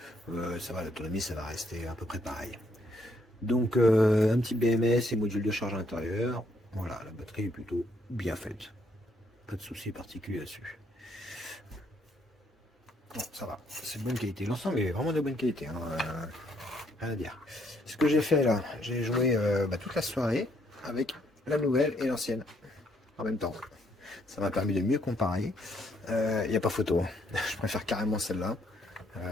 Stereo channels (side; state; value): both; normal; correlation 0.71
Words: ça va, l'autonomie ça va rester à peu près pareil. Donc un petit BMS et module de charge à l'intérieur. Voilà, la batterie est plutôt bien faite. Pas de soucis particuliers là-dessus. Bon, ça va, c'est de bonne qualité. L'ensemble est vraiment de bonne qualité. Hein, rien à dire. Ce que j'ai fait là, j'ai joué toute la soirée avec la nouvelle et l'ancienne en même temps. Ça m'a permis de mieux comparer. Il n'y a pas photo. Je préfère carrément celle-là.